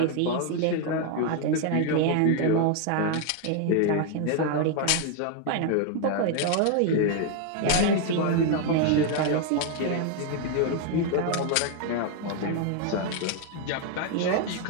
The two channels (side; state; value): both; different; correlation 0.00